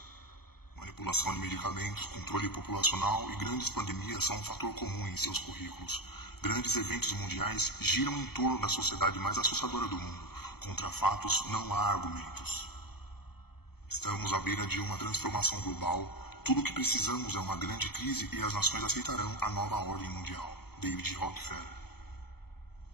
Manipulação de medicamentos, controle populacional e grandes pandemias são um fator comum em seus currículos. Grandes eventos mundiais giram em torno da sociedade mais assustadora do mundo. Contra fatos não há argumentos. Estamos à beira de uma transformação global. Tudo o que precisamos é uma grande crise e as nações aceitarão a nova ordem mundial. David Rockefeller.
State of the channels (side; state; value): right; late; 0.96 ms